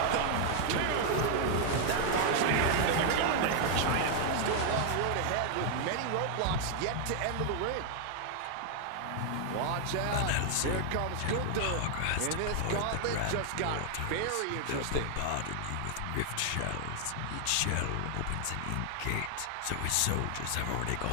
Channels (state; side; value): different; both; correlation 0.00